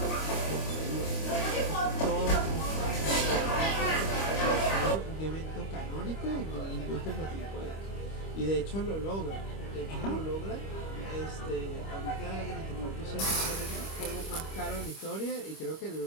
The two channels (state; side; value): late; right; 25 ms